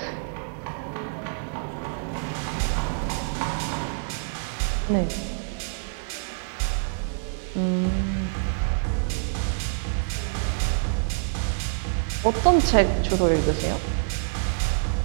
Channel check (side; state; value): left; silent; 61 dB below the other